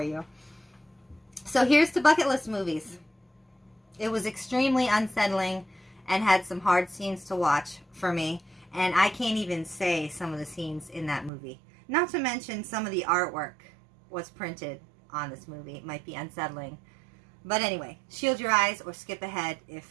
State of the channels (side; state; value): left; drops out; at 11.3 s